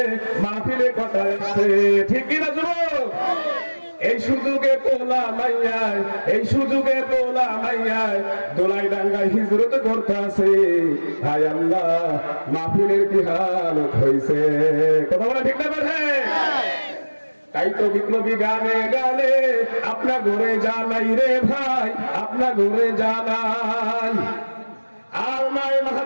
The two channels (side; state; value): both; inverted; correlation -1.00